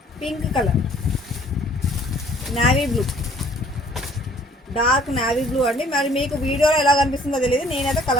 pink colour, navy blue, dark navy blue అండి. మరి మీకు వీడియోలో ఎలా కనిపిస్తుందో తెలియదు, నేనైతే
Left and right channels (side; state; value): both; normal; correlation 0.57